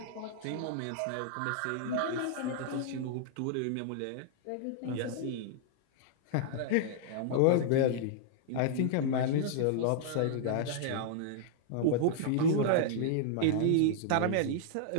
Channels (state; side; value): different; both; correlation -0.01